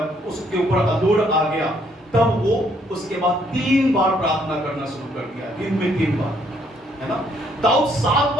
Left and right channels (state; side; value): normal; both; correlation 0.68